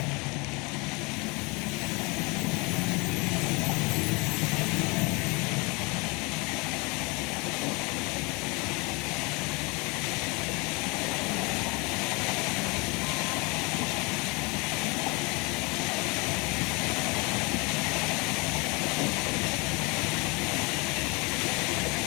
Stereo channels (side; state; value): right; quieter; 28.1 dB